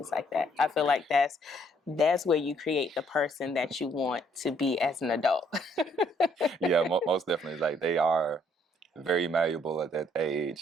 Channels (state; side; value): normal; both; correlation 0.67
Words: like that. I feel like that's where you create the person that you want to be as an adult. Yeah, most definitely. Like, they are very malleable at that